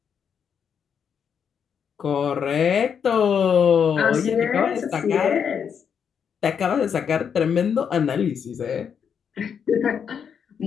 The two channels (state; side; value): quieter; right; 7.3 dB